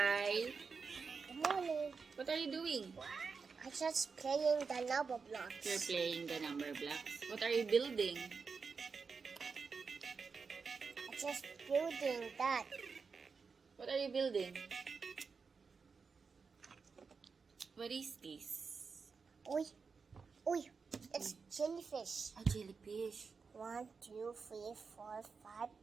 Good morning. What are you doing? I'm just playing the lava blocks. You're playing the number blocks. What are you building? I'm just building that. What are you building? What is this? Oi, oi, it's jellyfish. A jellyfish. 1, 2, 3, 4, 5,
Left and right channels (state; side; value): quieter; left; 5.1 dB